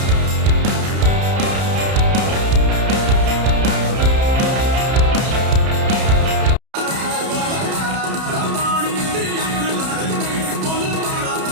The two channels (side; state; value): left; late; 31 ms